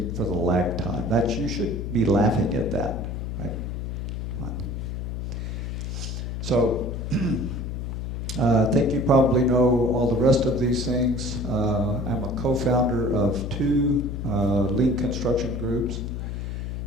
for the lag time. You should be laughing at that, right? So, I think you probably know all the rest of these things. I'm a co-founder of two lean construction groups.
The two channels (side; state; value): left; noise; hum, 4 dB below the sound